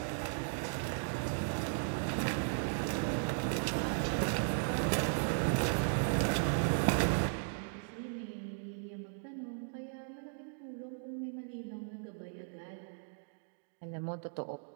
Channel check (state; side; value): silent; left; digital silence